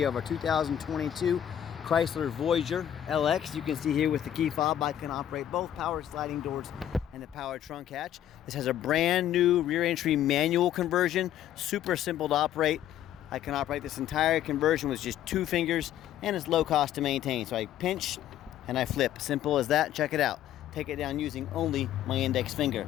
of our 2022 Chrysler Voyager LX. You can see here with the key fob I can operate both power sliding doors and the power trunk hatch. This has a brand new rear entry manual conversion, super simple to operate. I can operate this entire conversion with just 2 fingers, and it's low cost to maintain. So I pinch and I flip, simple as that. Check it out. Take it down using only my index finger.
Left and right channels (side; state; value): right; quieter; 11.2 dB